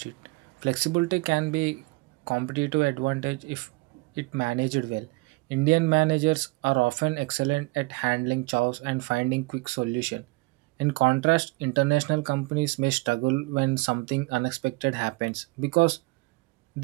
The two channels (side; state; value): left; quieter; 25.5 dB